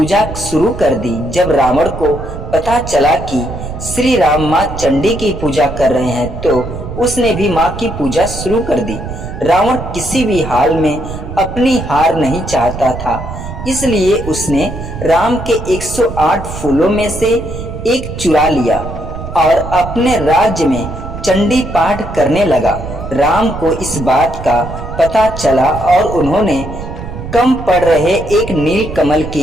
शुरू कर दी। जब रावण को पता चला कि श्री राम मां चंडी की पूजा कर रहे हैं, तो उसने भी मां की पूजा शुरू कर दी। रावण किसी भी हाल में अपनी हार नहीं चाहता था, इसलिए उसने राम के 108 फूलों में से एक चुरा लिया और अपने राज्य में चंडी पाठ करने लगा। राम को इस बात का पता चला और उन्होंने कम पड़ रहे एक नील कमल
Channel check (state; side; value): noise; right; rumble, 9 dB below the sound